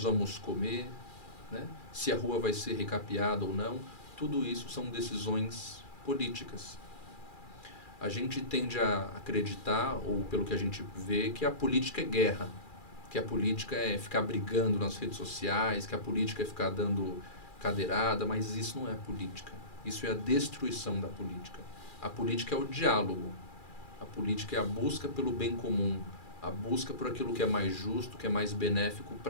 vamos comer, né? Se a rua vai ser recapeada ou não. Tudo isso são decisões políticas. A gente tende a acreditar, ou pelo que a gente vê, que a política é guerra, que a política é ficar brigando nas redes sociais, que a política é ficar dando cadeirada, mas isso não é política. Isso é a destruição da política. A política é o diálogo. A política é a busca pelo bem comum, a busca por aquilo que é mais justo, que é mais benéfico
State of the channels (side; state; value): right; late; 2.4 ms